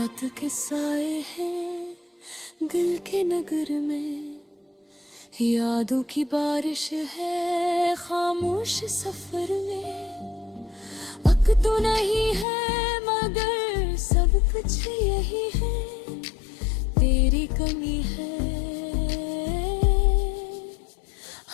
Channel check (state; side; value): drops out; right; at 12.5 s